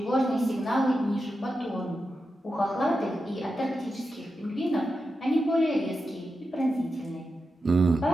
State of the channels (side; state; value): both; normal; correlation 0.89